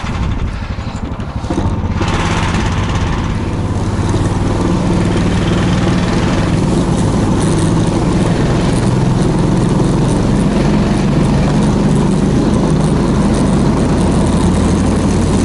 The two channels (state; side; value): identical; both; correlation 1.00